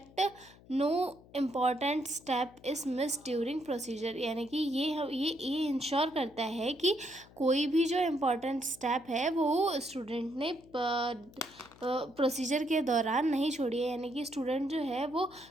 no important step is miss during procedure. यानी कि ये इंश्योर करता है कि कोई भी जो इम्पॉर्टेंट स्टेप है वो स्टूडेंट ने प्रोसीजर के दौरान नहीं छोड़ी है। यानी कि स्टूडेंट जो है वो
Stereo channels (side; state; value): left; noise; hum, 24 dB below the sound